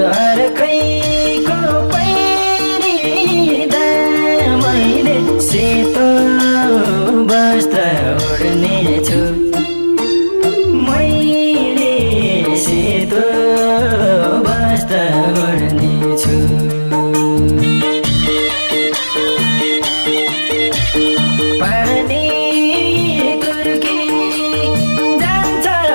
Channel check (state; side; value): inverted; both; correlation -1.00